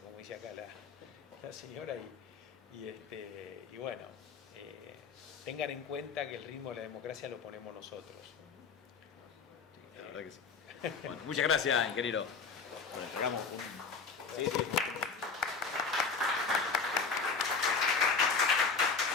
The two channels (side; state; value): right; quieter; 5.0 dB